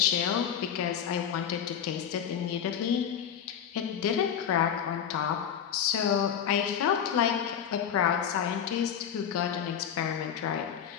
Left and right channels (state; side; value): quieter; right; 8.6 dB